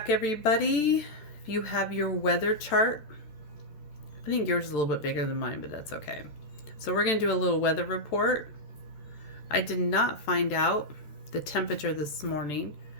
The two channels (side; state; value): right; late; 14 ms